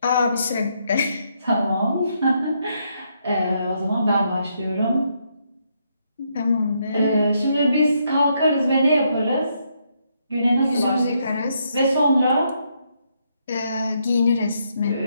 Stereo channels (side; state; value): both; inverted; correlation -0.76